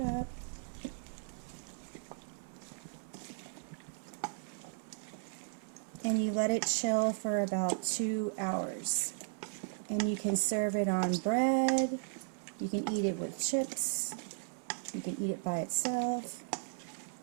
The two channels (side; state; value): left; silent; 54 dB below the other